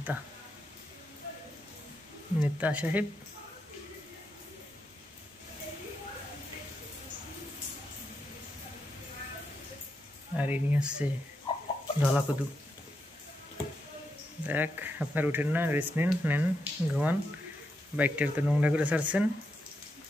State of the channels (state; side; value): normal; both; correlation 0.83